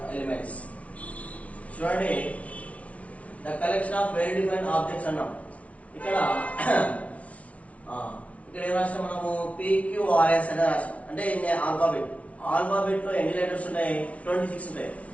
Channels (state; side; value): late; right; 0.065 ms